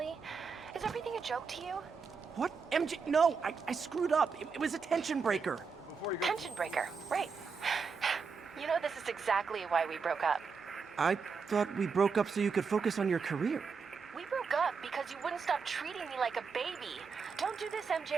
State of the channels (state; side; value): quieter; left; 5.3 dB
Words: Is everything a joke to you? What? MJ? No, I screwed up. It was a tension breaker. Before you go... Tension breaker, right. You know, this is exactly why we broke up. I thought we broke up so you could focus on your career. We broke up because you wouldn't stop treating me like a baby. Don't do this,